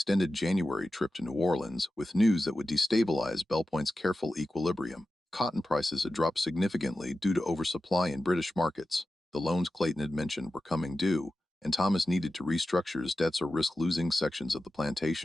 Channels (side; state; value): both; normal; correlation 0.93